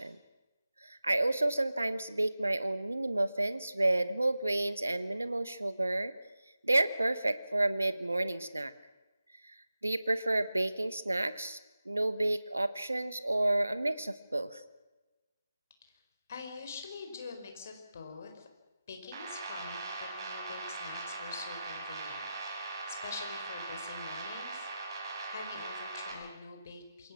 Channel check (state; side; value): inverted; both; correlation -0.94